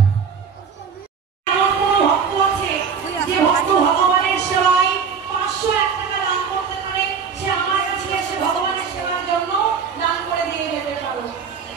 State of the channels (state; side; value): quieter; left; 6.3 dB